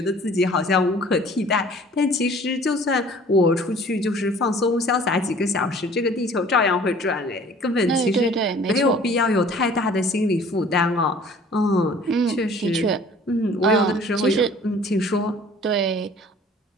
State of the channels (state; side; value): normal; both; correlation 0.50